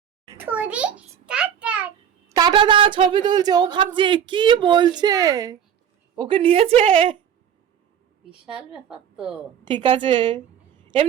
টাটা দা, ছবি তুলছে। ও ভাবছে কি বলছে, ওকে নিয়েছে। বিশাল ব্যাপার তো। ঠিক আছে,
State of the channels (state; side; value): quieter; left; 9.0 dB